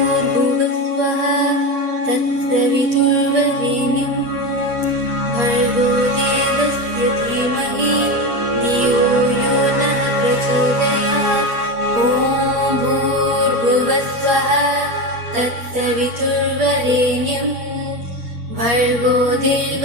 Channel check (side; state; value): left; late; 8.5 ms